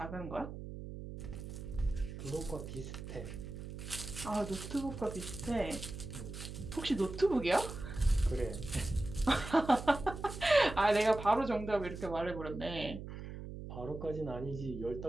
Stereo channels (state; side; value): noise; right; hum, 9 dB below the sound